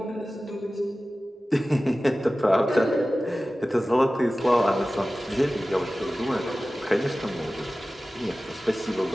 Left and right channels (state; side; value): normal; both; correlation 0.96